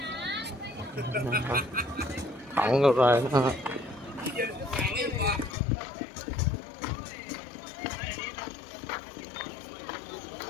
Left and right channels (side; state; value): right; drops out; at 5.6 s